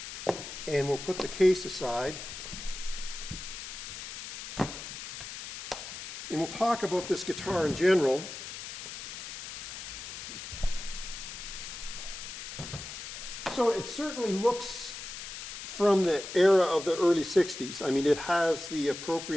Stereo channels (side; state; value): left; noise; hiss, 9 dB below the sound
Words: And we'll put the case aside. And we'll talk about this guitar in general. So it certainly looks from the era of the early 60s. I mean, it has the